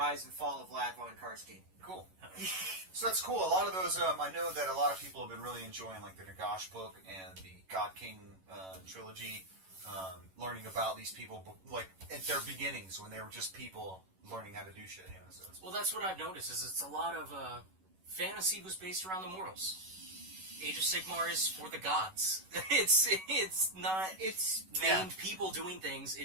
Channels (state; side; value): late; left; 11 ms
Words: and fall of Vlad von Karstein. Cool. So that's cool. A lot of those, I know that a lot of people have been really enjoying the Nagash book and the God King trilogy. Learning about these people, at their beginnings when they were just people learning how to do shit. So well, that's what I've noticed. Is it's a lot of fantasy was based around the mortals. Age of Sigmar is for the gods. It's not. It's named people doing things.